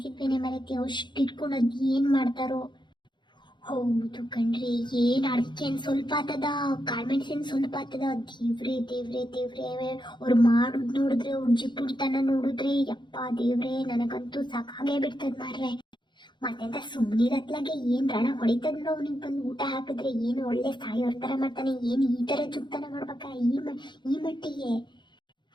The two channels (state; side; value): late; right; 0.22 ms